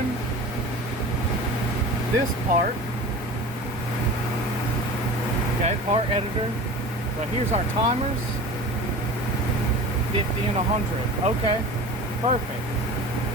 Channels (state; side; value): normal; both; correlation 0.36